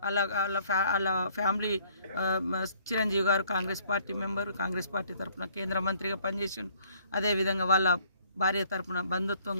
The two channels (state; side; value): inverted; both; correlation -0.60